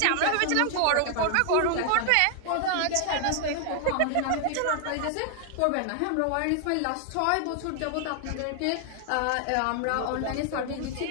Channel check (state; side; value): different; both; correlation 0.00